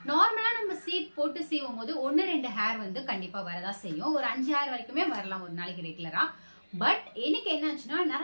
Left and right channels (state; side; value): inverted; both; correlation -1.00